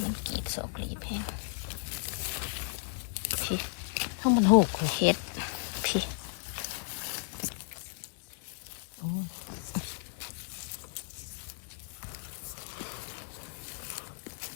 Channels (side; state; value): right; silent; 55 dB below the other